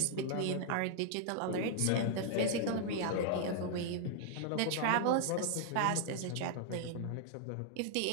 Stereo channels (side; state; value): both; different; correlation 0.00